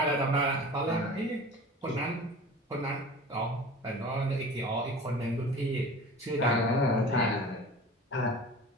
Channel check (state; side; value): normal; both; correlation 0.39